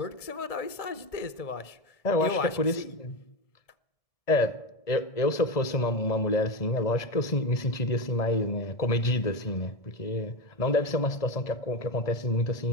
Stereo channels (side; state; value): right; late; 1.6 ms